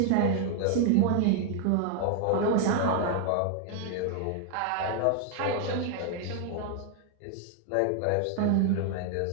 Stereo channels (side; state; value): both; different; correlation 0.00